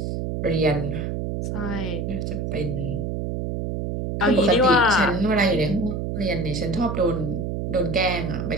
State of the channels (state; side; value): noise; right; hum, 3 dB below the sound